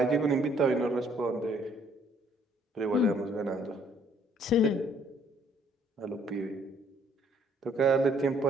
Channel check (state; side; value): normal; both; correlation 0.63